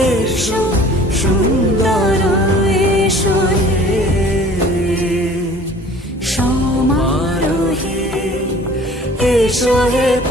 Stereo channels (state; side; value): normal; both; correlation 0.49